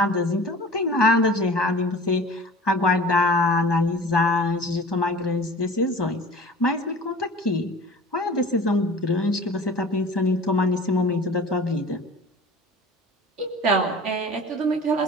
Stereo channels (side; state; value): both; normal; correlation 0.41